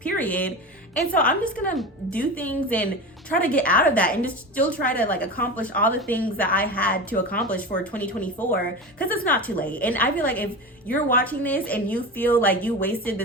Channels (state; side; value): normal; both; correlation 0.27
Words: And so I'm just gonna do things and try to get out of that and just still try to like accomplish all the things that I had to accomplish for 2024 because it's not too late. And I feel like if you're watching this and you feel like you wasted